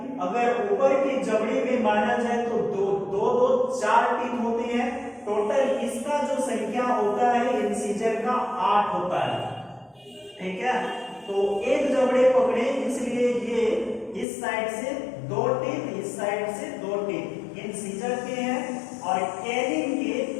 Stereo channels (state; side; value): drops out; right; at 14.2 s